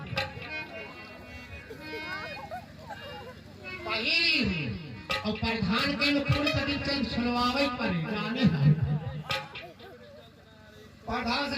पहली और प्रधान के अनुकूल कभी चल सुनवावे पर जाने है। प्रधान से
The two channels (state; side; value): identical; both; correlation 1.00